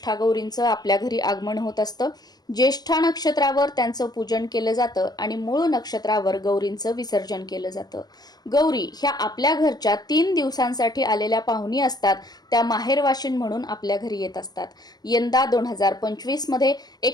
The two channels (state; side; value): late; right; 0.19 ms